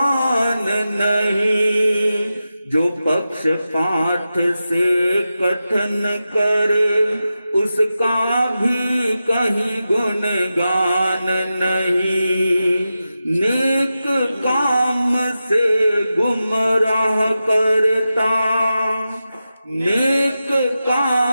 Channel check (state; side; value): inverted; both; correlation -0.92